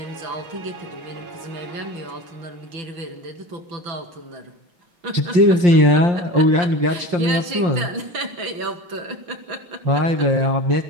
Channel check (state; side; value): late; left; 5.7 ms